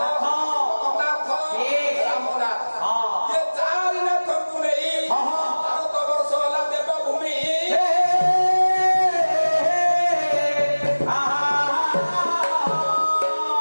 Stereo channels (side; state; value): both; inverted; correlation -1.00